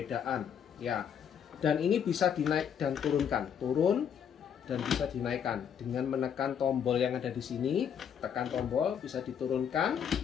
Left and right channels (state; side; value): quieter; right; 8.1 dB